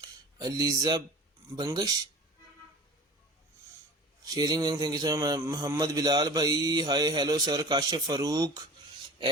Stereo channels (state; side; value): normal; both; correlation 0.40